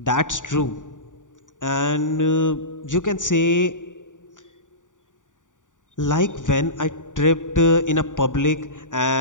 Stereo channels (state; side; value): late; right; 0.87 ms